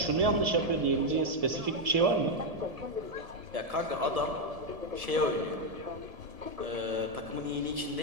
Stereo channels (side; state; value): left; late; 1.7 ms